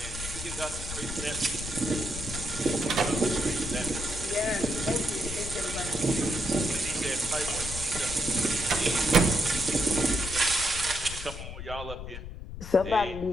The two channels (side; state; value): left; noise; rumble, 9 dB below the sound